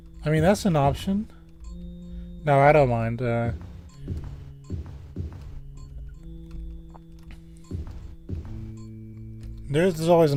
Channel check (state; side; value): identical; both; correlation 1.00